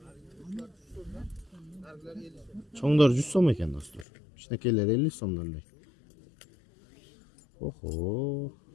Чоңдор 100 сом экен достор. Кичинекейлер 50 сомдон дейт. Охо.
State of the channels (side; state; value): right; drops out; at 4.0 s